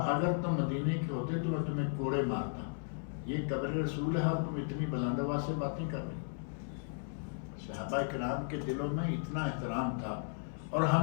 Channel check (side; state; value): right; silent; 54 dB below the other